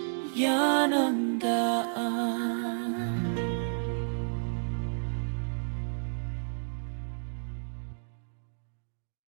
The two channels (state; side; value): silent; left; digital silence